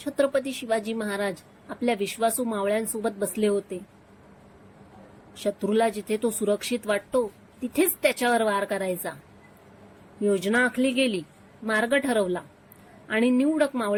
शिवाजी महाराज आपल्या विश्वासू मावळ्यांसोबत बसले होते. शत्रूला जिथे तो सुरक्षित वाटतो तिथेच त्याच्यावर वार करायचा. योजना आखली गेली, मार्ग ठरवला आणि निवडक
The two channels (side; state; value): both; identical; correlation 1.00